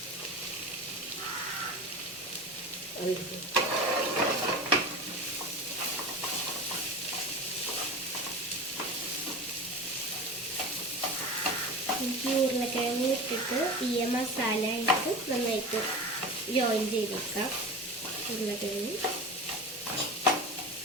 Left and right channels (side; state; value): both; normal; correlation 0.30